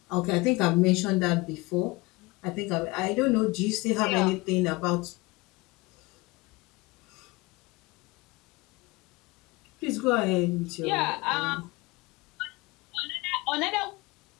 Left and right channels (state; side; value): quieter; right; 23.1 dB